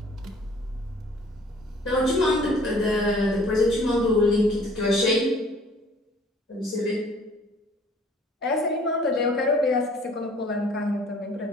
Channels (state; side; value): normal; both; correlation 0.54